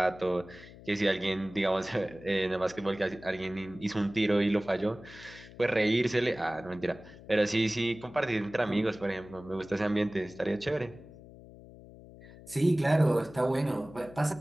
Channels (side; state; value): left; noise; hum, 19 dB below the sound